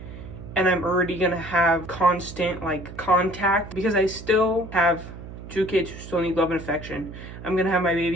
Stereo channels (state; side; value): noise; right; hum, 13 dB below the sound